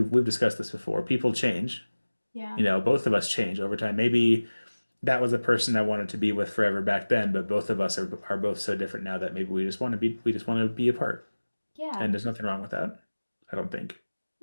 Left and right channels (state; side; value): inverted; both; correlation -1.00